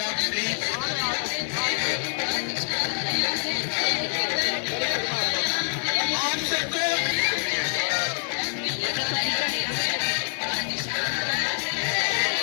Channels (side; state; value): right; silent; 58 dB below the other